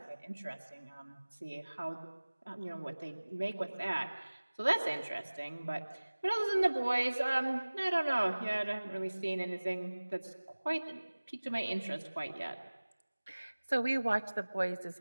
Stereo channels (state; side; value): inverted; both; correlation -1.00